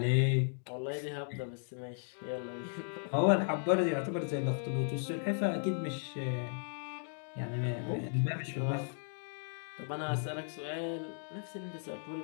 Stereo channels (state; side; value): silent; right; digital silence